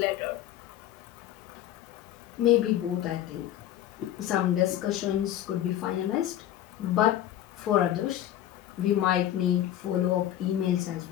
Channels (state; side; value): quieter; right; 12.1 dB